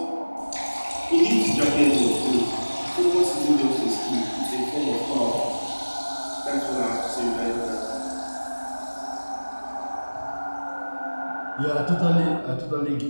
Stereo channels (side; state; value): both; inverted; correlation -1.00